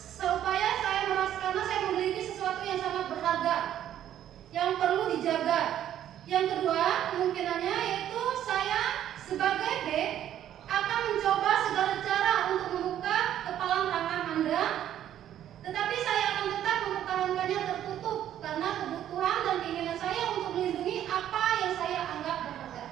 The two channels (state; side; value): quieter; left; 11.2 dB